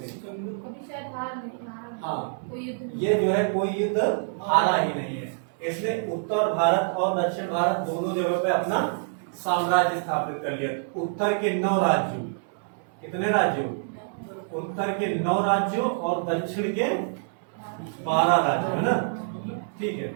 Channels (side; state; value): left; silent; 61 dB below the other